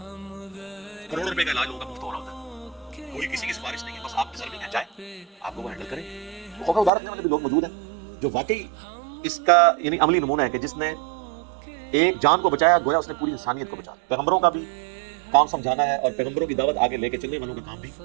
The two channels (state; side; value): drops out; left; at 6.9 s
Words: کروڑوں روپے کا علاج لوگوں کا مفت ہو رہا ہوتا ہے, کوئی کسی کی سفارش نہیں ہے, بس آپ ڈیزرونگ ہیں, جائیں آپ کو وہ ہینڈل کریں. خوف ادار رکھنے والے بھی لوگ موجود ہیں جو واقعی اس کا یعنی عملی نمونہ ہے کہ جس نے ایک جان کو بچایا, گویا اس نے پوری انسانیت کو بچایا. پیغمبروں کا بھی کام سمجھانا ہے, اور پیغمبروں کی دعوت آگے لے کے چلنے والوں کا کام بھی